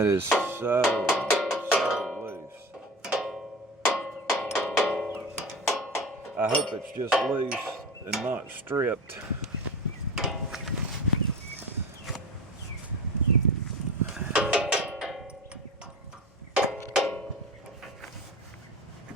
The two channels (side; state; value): both; normal; correlation 0.30